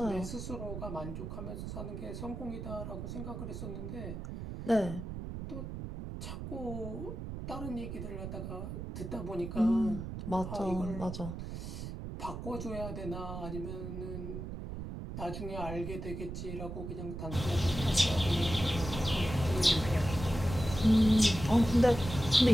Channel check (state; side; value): noise; right; rumble, 7 dB below the sound